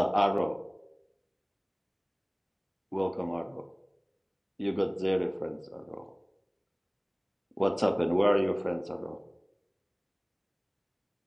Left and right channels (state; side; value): identical; both; correlation 1.00